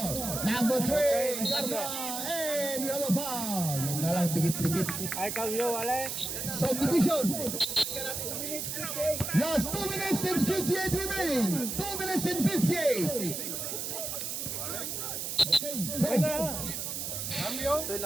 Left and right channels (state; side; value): noise; right; hiss, 4 dB below the sound